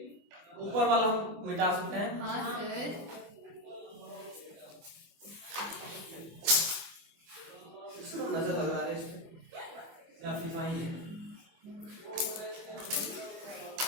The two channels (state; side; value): late; left; 24 ms